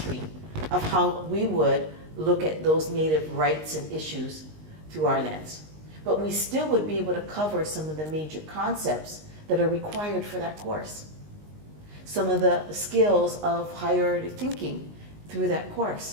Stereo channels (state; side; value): late; left; 19 ms